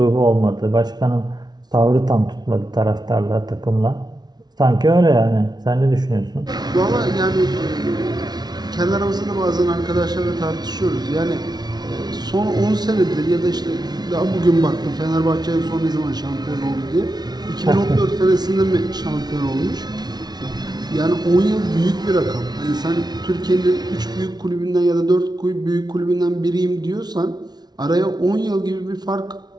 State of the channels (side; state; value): left; late; 0.19 ms